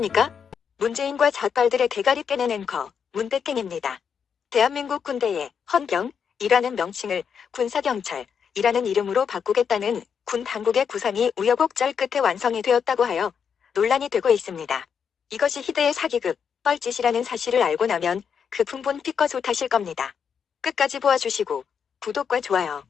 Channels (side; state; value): right; quieter; 7.0 dB